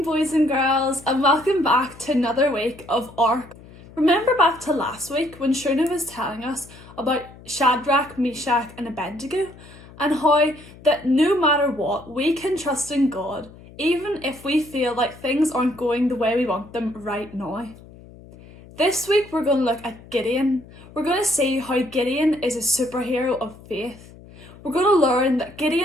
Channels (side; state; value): left; noise; hum, 20 dB below the sound